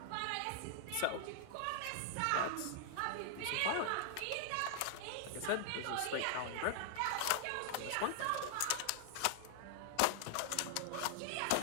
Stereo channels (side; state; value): both; different; correlation 0.00